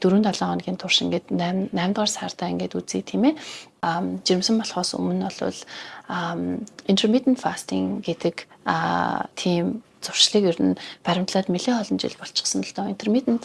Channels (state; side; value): identical; both; correlation 1.00